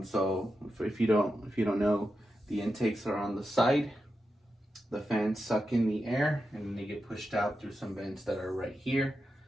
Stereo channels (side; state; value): both; normal; correlation 0.89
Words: So if you don't know, the intakes are on the side. The fans suck in the air and then they get pushed out through some vents that are right here.